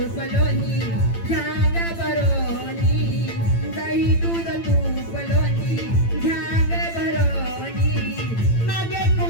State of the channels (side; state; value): right; late; 8.9 ms